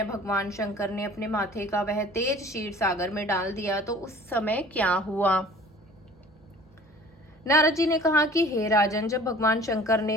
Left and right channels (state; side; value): normal; both; correlation 0.48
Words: भगवान शंकर ने अपने माथे का वह तेज क्षीर सागर में डाल दिया तो उस समय क्या हुआ। नारद जी ने कहा कि हे राजन, जब भगवान शंकर